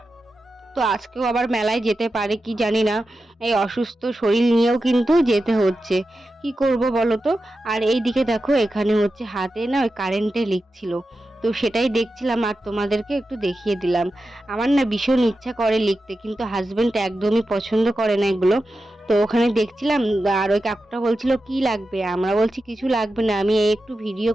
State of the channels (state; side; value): normal; both; correlation 0.91